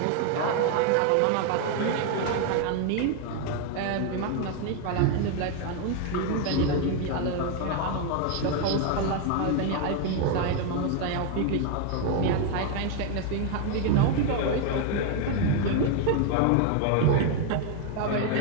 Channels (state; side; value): different; both; correlation 0.01